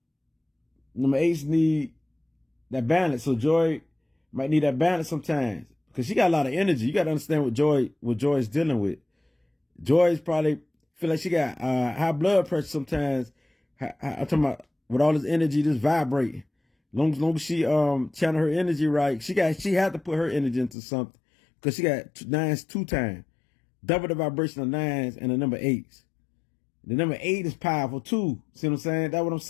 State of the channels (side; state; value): right; drops out; at 20.8 s